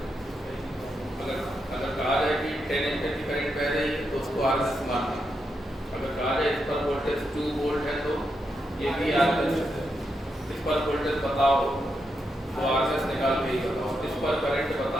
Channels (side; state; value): both; normal; correlation 0.83